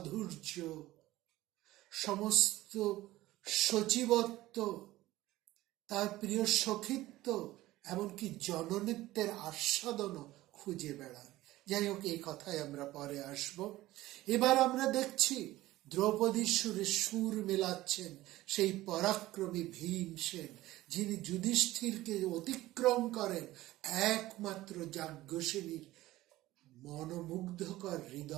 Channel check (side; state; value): left; quieter; 16.8 dB